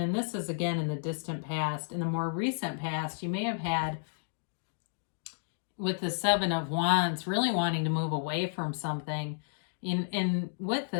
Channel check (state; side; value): silent; right; digital silence